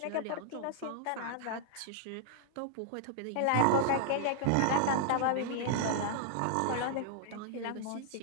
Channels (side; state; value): both; different; correlation -0.01